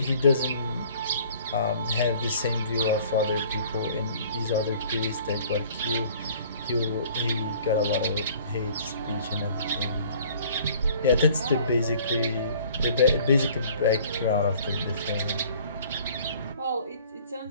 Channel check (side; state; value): both; inverted; correlation -0.53